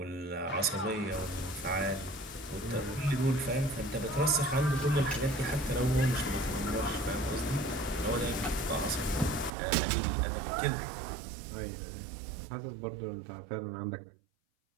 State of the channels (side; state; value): left; drops out; at 9.5 s